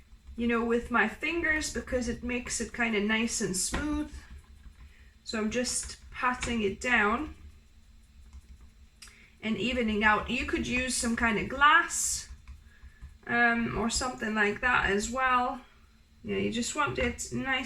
you know, with my fingers because it makes it kind of nice and smooth. So I'm just patting it down and evening out. You could use some kind of glass or something like that as well. Yeah, you just want it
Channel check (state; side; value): identical; both; correlation 1.00